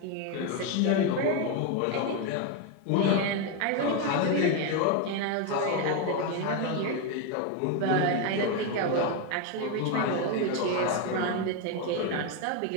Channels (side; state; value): both; different; correlation 0.02